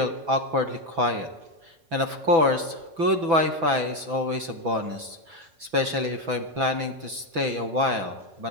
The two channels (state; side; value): late; left; 6.0 ms